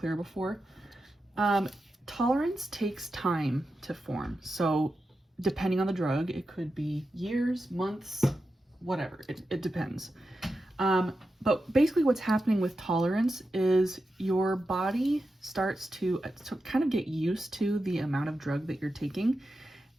before. Tolerance takes time to form. So depending on the drug, it could be years, months, whatever. It depends. But basically what's happening with tolerance is your body starts to kind of get used to the amount of drug that you're taking,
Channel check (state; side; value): normal; both; correlation 0.90